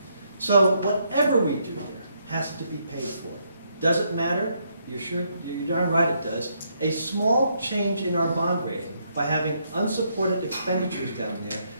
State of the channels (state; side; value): inverted; both; correlation -0.75